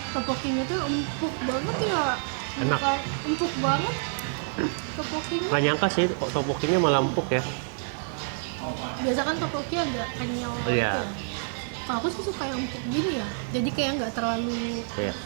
Tteokbokkinya tuh empuk banget ya. Enak. Bukan empuk banget, Topokinya Nggak nyangka sih kok topokinya malah empuk ya. biasa kan topoki agak kenyal Iya. gitu ya. Kalau aku sih suka yang empuk gini ya. Jadi kayak nggak terlalu Iya,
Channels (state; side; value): silent; left; 60 dB below the other